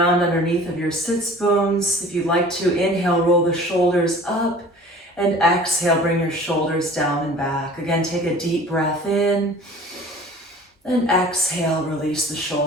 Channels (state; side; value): normal; both; correlation 0.45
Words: underneath of your sits bones. If you'd like to, inhale, roll the shoulders up, and exhale, bring your shoulders down and back. Again, take a deep breath in, and exhale, release the